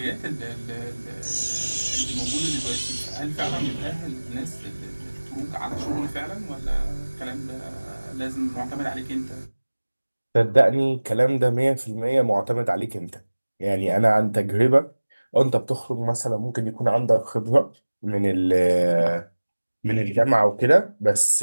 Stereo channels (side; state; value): both; inverted; correlation -1.00